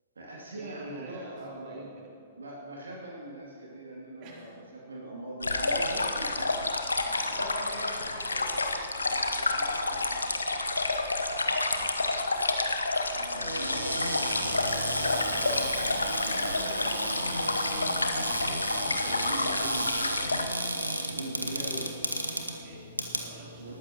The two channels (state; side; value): inverted; both; correlation -0.79